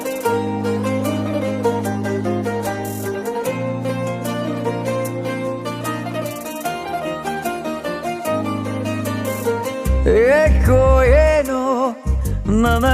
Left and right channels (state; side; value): identical; both; correlation 1.00